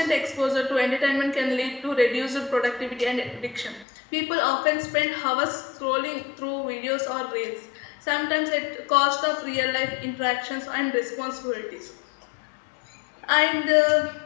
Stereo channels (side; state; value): right; drops out; at 3.9 s